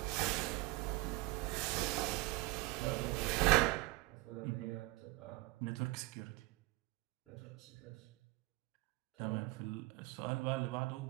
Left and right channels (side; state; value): left; quieter; 20.7 dB